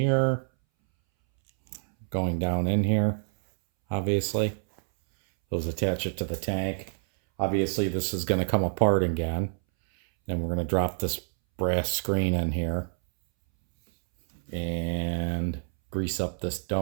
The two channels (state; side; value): silent; left; 60 dB below the other